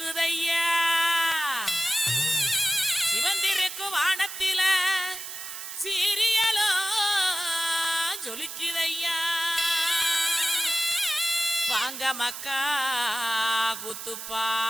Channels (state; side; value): noise; right; hiss, 9 dB below the sound